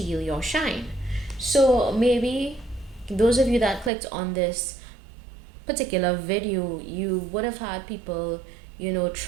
your shine. So maybe those of you that clicked on this particular video, you would have had people,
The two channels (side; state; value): left; drops out; at 3.9 s